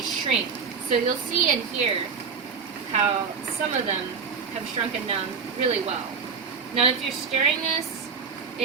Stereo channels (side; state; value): left; quieter; 5.8 dB